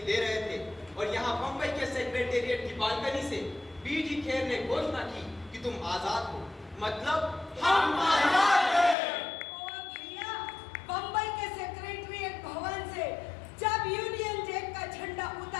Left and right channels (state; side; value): drops out; right; at 9.0 s